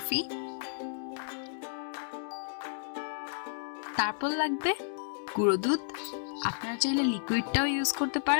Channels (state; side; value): silent; right; digital silence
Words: তারপর লাগবে গুঁড়ো দুধ, আপনারা চাইলে লিকুইডটাও ইউজ করতে